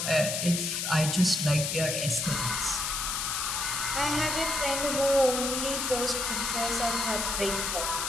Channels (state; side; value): noise; left; hiss, 1 dB below the sound